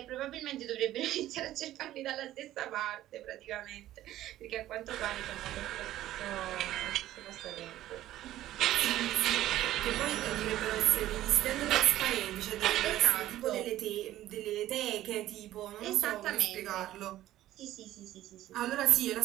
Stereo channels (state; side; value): quieter; left; 14.0 dB